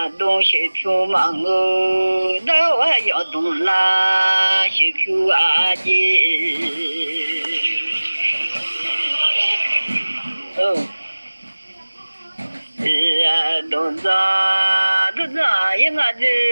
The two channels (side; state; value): both; inverted; correlation -1.00